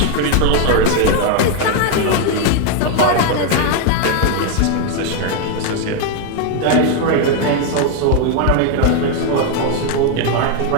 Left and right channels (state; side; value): different; both; correlation 0.01